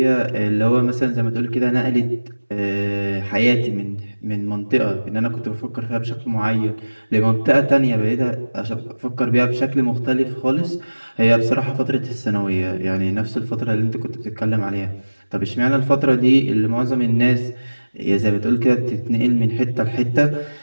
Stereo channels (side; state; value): both; inverted; correlation -1.00